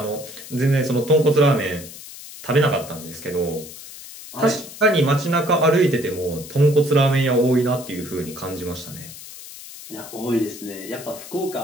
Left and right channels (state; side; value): noise; left; hiss, 15 dB below the sound